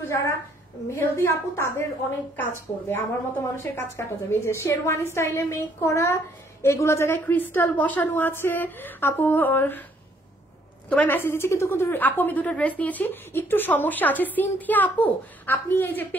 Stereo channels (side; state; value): both; normal; correlation 0.66